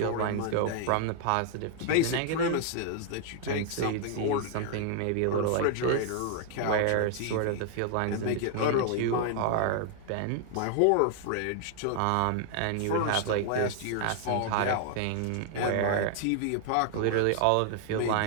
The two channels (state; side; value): different; both; correlation 0.00